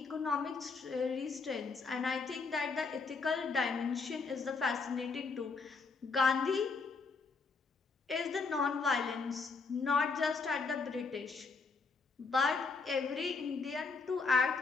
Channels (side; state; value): right; quieter; 4.5 dB